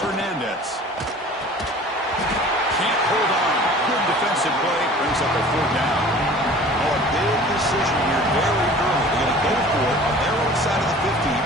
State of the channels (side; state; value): both; normal; correlation 0.45